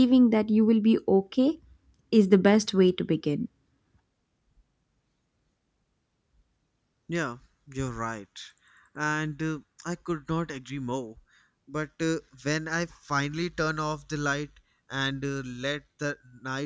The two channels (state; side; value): identical; both; correlation 1.00